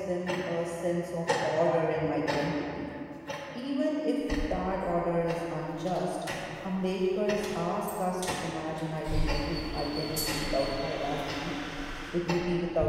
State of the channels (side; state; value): both; identical; correlation 1.00